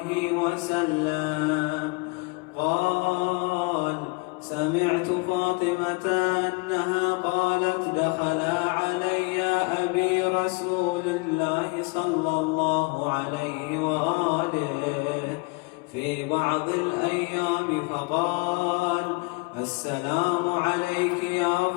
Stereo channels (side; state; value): right; quieter; 29.1 dB